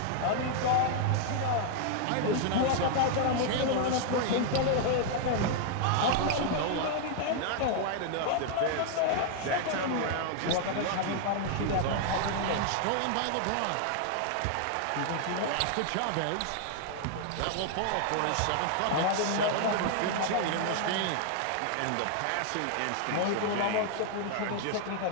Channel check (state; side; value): different; both; correlation 0.00